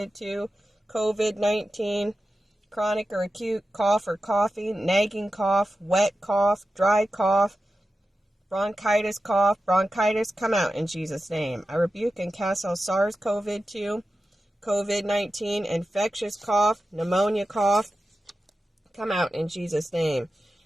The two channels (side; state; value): both; normal; correlation 0.92